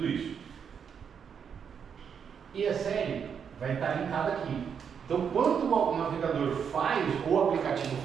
isso. E a série vai estar linkada aqui. Então, quando o navegador faz, ou o aplicativo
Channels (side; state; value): left; quieter; 7.2 dB